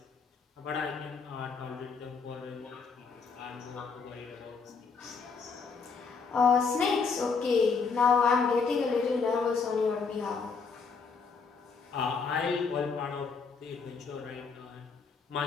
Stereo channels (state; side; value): quieter; right; 5.1 dB